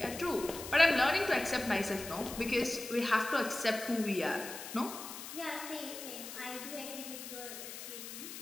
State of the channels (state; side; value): noise; left; hiss, 10 dB below the sound